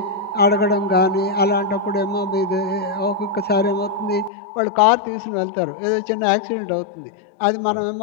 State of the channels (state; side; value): drops out; right; at 4.3 s